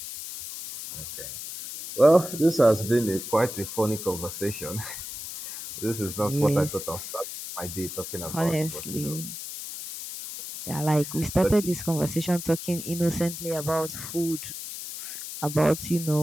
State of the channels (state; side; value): noise; left; hiss, 9 dB below the sound